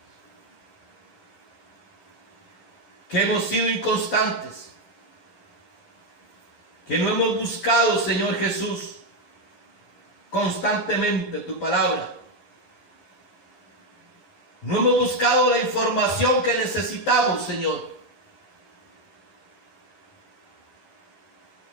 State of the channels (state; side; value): late; right; 10 ms